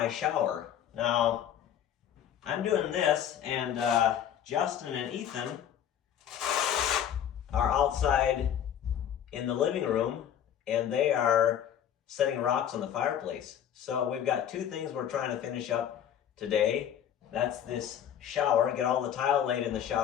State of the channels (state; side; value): quieter; right; 9.7 dB